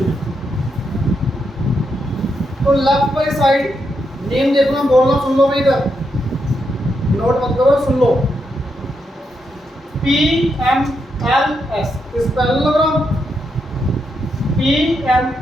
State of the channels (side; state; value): both; normal; correlation 0.82